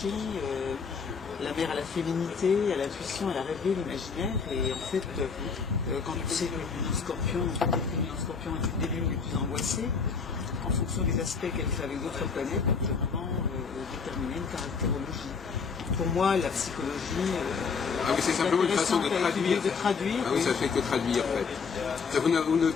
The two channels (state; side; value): quieter; right; 5.5 dB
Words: la mère à la féminité, à l'intuition, à la rêverie, l'imaginaire. Et en fait, quand on sait que le Scorpion est une des lunes les plus angoissées, en fonction des aspects qu'elle fait avec d'autres planètes, on peut vraiment déterminer une caractérologie. Pour moi, la psychologie... c'est simplement une façon de traduire. Ah oui, ça fait que traduire, en fait.